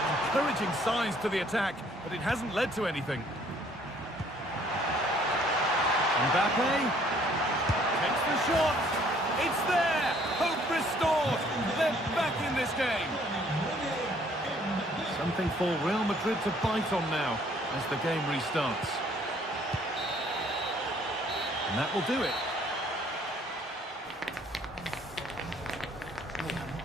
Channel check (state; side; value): normal; both; correlation 0.61